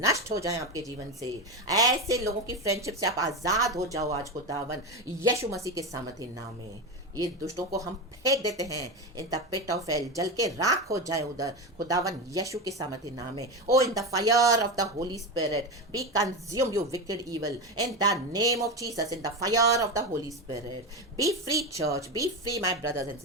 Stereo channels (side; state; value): both; normal; correlation 0.18